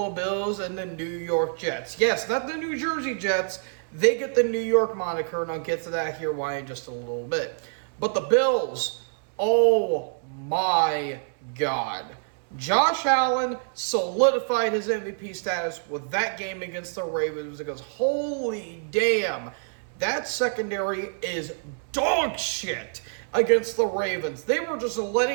Bills and the New York Jets. Yes, not the New Jersey Jets. They get the New York moniker, and I'll get to that here why in just a little bit. But the Bills, oh my God. Josh Allen solidified his MVP status with that game against the Ravens because holy damn, that secondary is dog shit against the Ravens. They were just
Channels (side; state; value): left; silent; digital silence